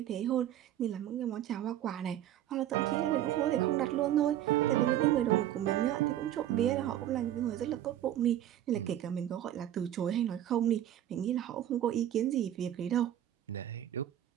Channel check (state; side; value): quieter; left; 11.9 dB